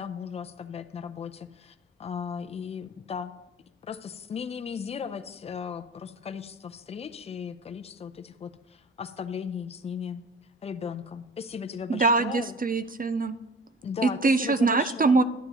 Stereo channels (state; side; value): normal; both; correlation 0.43